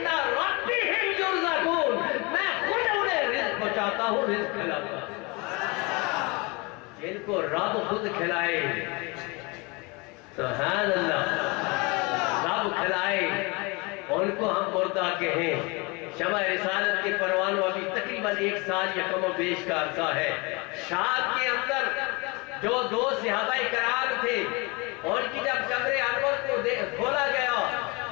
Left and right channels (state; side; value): quieter; right; 27.4 dB